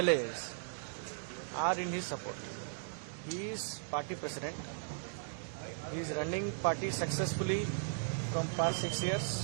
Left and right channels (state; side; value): silent; left; digital silence